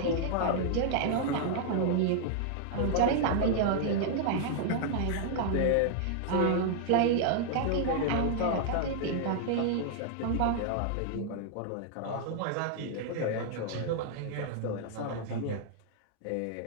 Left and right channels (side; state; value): both; different; correlation -0.01